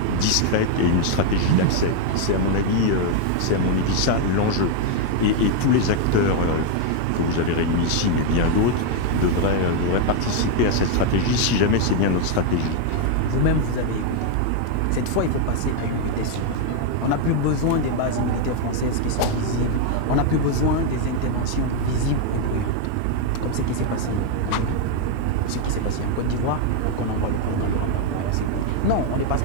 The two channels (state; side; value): different; both; correlation 0.00